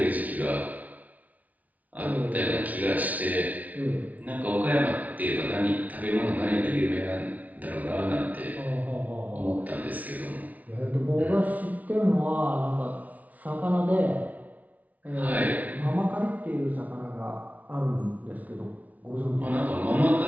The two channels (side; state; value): left; late; 0.072 ms